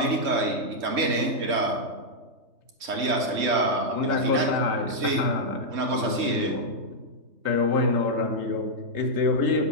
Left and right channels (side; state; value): left; late; 3.3 ms